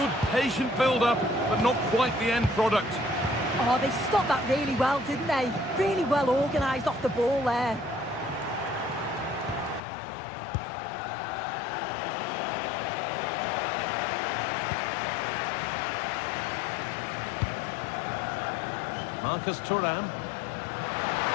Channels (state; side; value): drops out; right; at 9.8 s